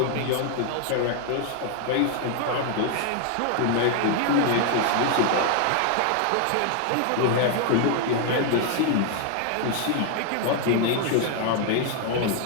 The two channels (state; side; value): different; both; correlation 0.00